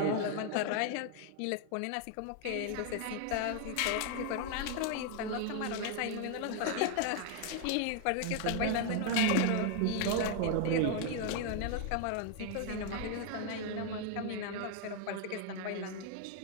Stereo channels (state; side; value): different; both; correlation 0.00